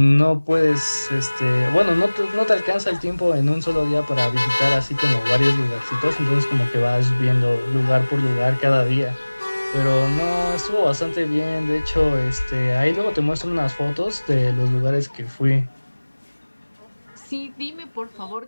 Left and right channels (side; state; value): both; inverted; correlation -1.00